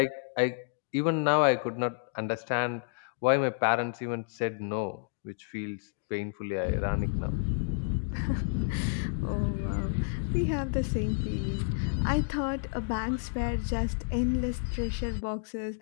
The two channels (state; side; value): silent; right; digital silence